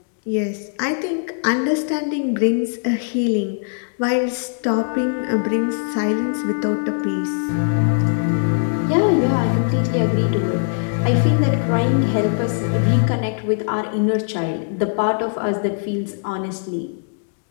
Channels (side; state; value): right; silent; digital silence